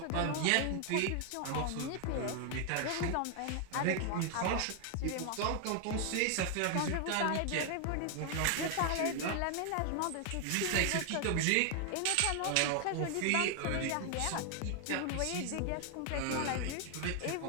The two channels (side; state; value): both; different; correlation 0.00